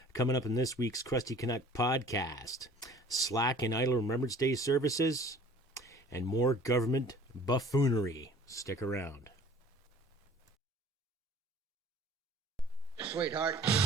Coming up in this week's Crusty Canuck podcast, slack and idle Remembrance Day services, and more government buffoonery. Stick around. Sweetheart,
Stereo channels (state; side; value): normal; both; correlation 0.49